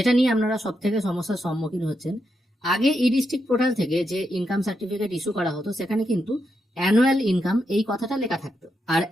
নিয়ে আপনারা সব থেকে সমস্যার সম্মুখীন হচ্ছেন, আগে ই ডিস্ট্রিক্ট পোর্টাল থেকে যে ইনকাম সার্টিফিকেট ইস্যু করা হতো সেখানে কিন্তু অ্যানুয়াল ইনকাম এই কথাটা লেখা থাকতো, আর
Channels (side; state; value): both; normal; correlation 0.83